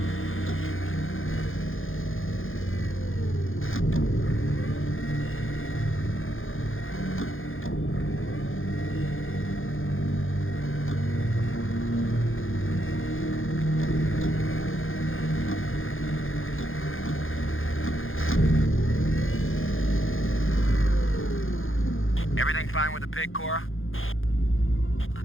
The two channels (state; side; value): late; right; 0.59 ms